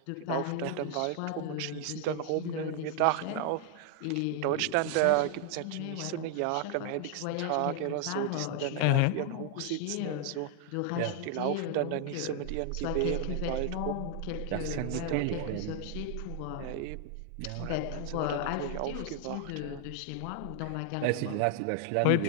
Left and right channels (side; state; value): both; different; correlation 0.00